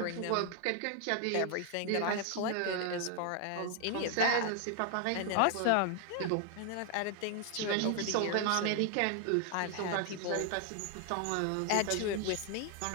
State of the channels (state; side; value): different; both; correlation 0.00